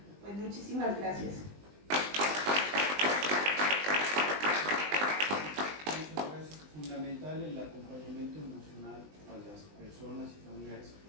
Pues muchísimas gracias. Muchas gracias. Fundamental el acompañamiento emocional a las personas y familiares que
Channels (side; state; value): left; late; 20 ms